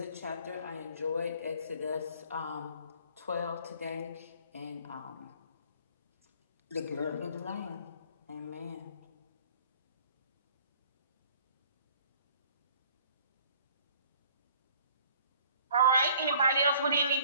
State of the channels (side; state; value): both; inverted; correlation -0.55